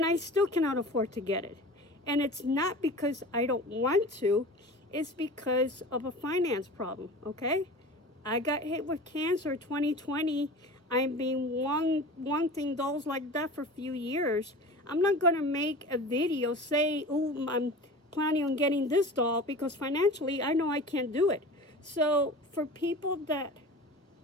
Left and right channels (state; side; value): normal; both; correlation 0.36